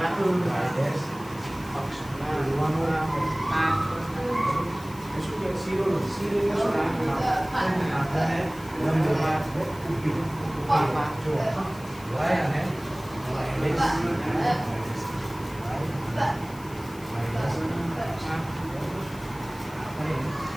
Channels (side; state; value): left; noise; hiss, 21 dB below the sound